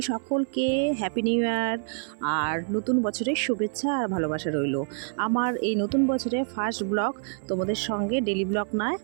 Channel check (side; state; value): left; silent; 57 dB below the other